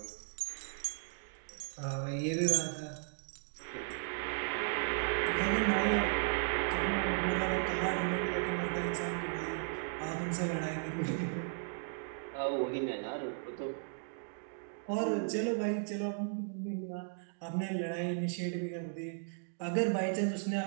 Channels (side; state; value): left; silent; digital silence